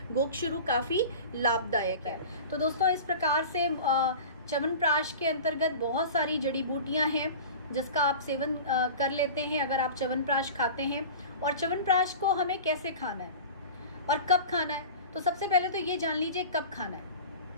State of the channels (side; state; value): both; inverted; correlation -0.35